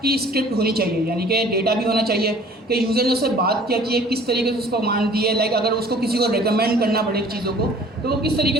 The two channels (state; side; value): normal; both; correlation 0.51